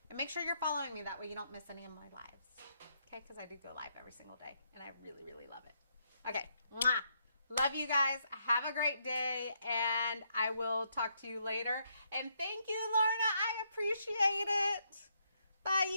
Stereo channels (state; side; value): inverted; both; correlation -0.76